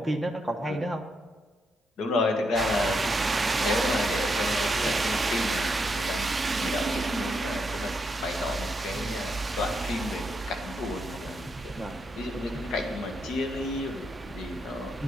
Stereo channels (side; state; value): both; normal; correlation 0.81